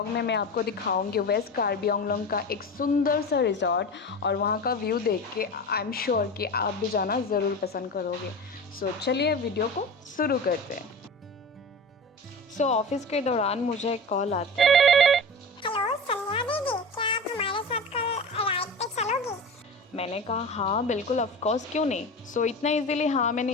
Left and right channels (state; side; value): normal; both; correlation 0.30